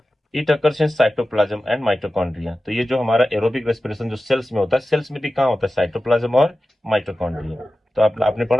It occurs in cytoplasm and mitochondria. तो ये जो हमारा एरोबिक रेस्पिरेशन जो सेल्स में होता है, सेल्स में भी कहाँ होता है? साइटोप्लाज्म और माइटोकॉन्ड्रिया। तो आपने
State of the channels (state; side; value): normal; both; correlation 0.94